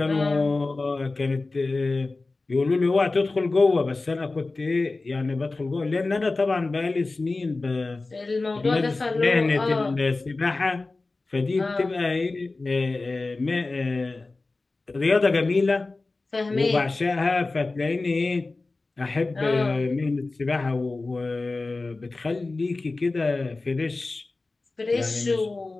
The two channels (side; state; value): right; quieter; 3.4 dB